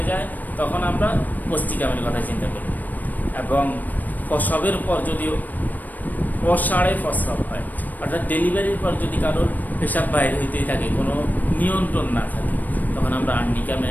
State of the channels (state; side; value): late; right; 0.084 ms